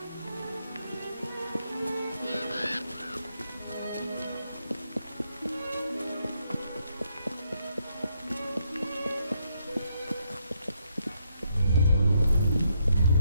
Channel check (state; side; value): inverted; both; correlation -0.76